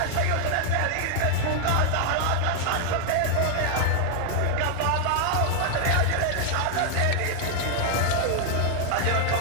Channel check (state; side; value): different; both; correlation 0.00